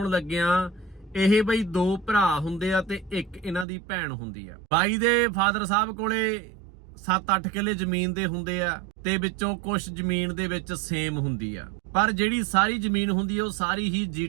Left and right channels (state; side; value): drops out; left; at 3.7 s